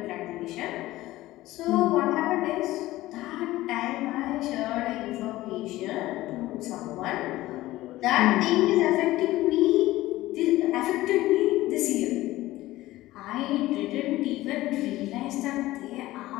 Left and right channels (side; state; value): right; quieter; 16.9 dB